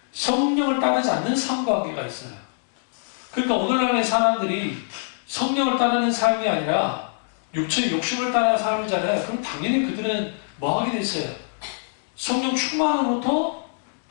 성령을 따르지 않는 삶과 관계가 있어요. 그러니까 오늘날의 사람들이 성령을 따르는 삶이 아니라 육체의 욕심을 따르는 삶이잖아요. 그럼 당연히 그들은 뭐 하게 돼 있어요? 성령 충만으로부터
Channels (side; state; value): right; silent; digital silence